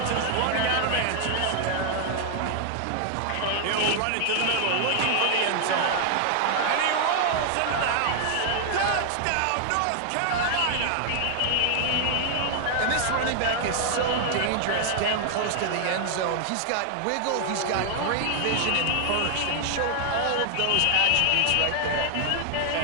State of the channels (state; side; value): different; both; correlation 0.00